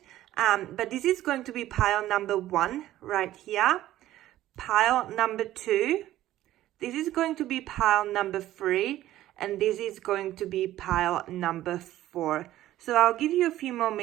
But this is going to be pile number 1 right here. Pile number 2. This is going to be pile number 3. And this is going to be pile number 4. So I'll give you a few more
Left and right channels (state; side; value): quieter; left; 14.2 dB